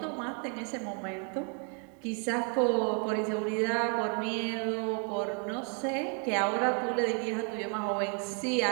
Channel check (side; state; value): left; quieter; 39.7 dB